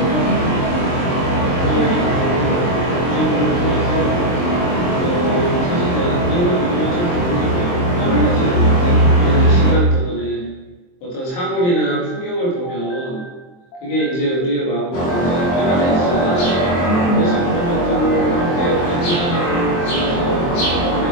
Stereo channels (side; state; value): right; late; 23 ms